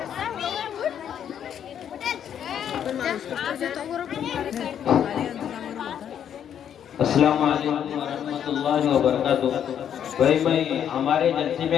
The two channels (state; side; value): quieter; right; 9.2 dB